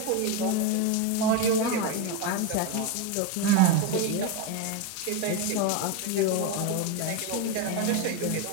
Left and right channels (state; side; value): different; both; correlation 0.04